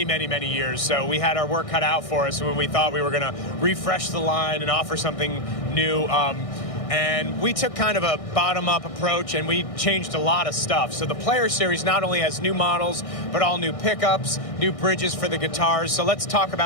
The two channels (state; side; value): late; right; 1.6 ms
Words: many, many years. So we had our work cut out for us when we thought we were going to refresh the line and offer something new. And we took kind of a bottom-up approach, and we changed a lot of stuff. So the Player Series not only has new models, but all new pickups, new bridges for the guitars. So let's talk